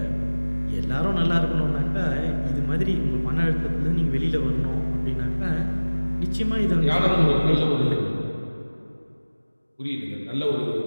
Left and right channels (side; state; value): both; inverted; correlation -1.00